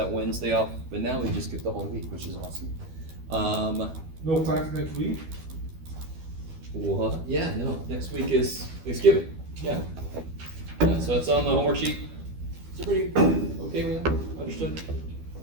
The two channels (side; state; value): left; late; 12 ms